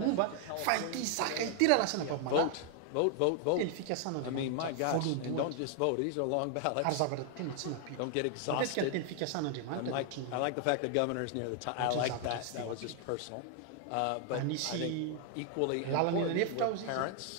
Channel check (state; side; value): different; both; correlation 0.00